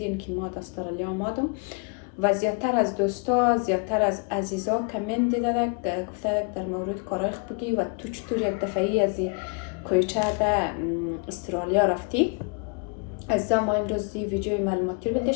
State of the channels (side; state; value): right; quieter; 36.0 dB